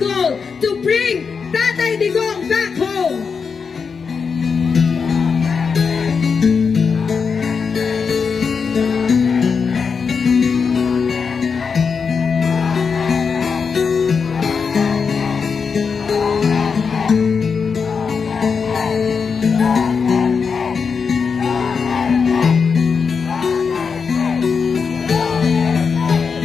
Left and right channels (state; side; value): quieter; right; 5.7 dB